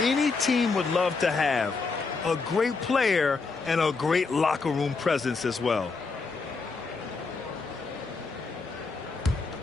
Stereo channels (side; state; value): right; quieter; 4.3 dB